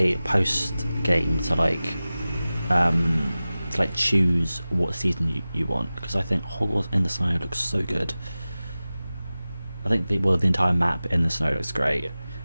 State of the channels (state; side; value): inverted; both; correlation -0.96